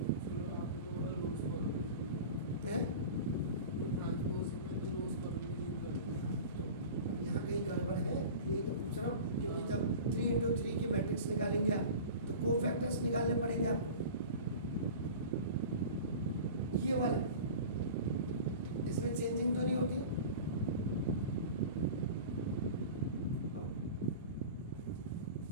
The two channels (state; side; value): inverted; both; correlation -0.36